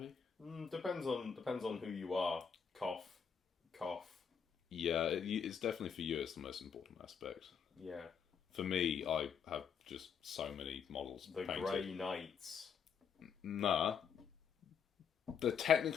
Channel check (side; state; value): right; quieter; 7.0 dB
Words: Depends on who you are. Cough, cough. Yeah, it's definitely for you, it's the most important aspect. Yeah. For me, I have just so many models The painted. Grey Knights. Nah. They're